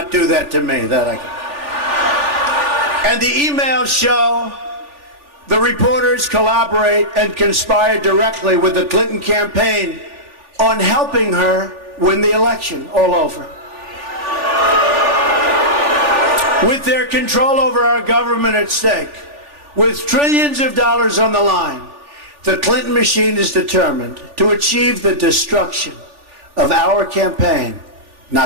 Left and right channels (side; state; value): left; late; 3.4 ms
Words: do that to me. And the emails show The reporters collaborate and conspire directly with the Clinton campaign on helping her win the election all over. With their control over our government at stake, with trillions of dollars on the line, the Clinton machine is determined to achieve the destruction of our campaign.